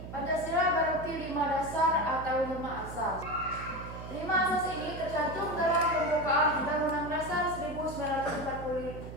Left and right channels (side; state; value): right; noise; hum, 11 dB below the sound